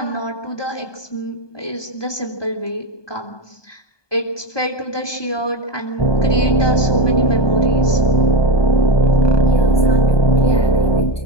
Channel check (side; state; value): right; late; 1.2 ms